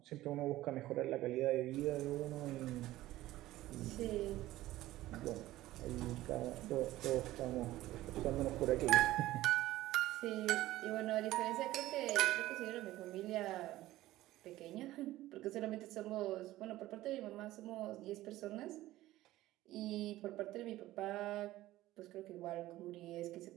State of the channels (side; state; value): left; quieter; 16.0 dB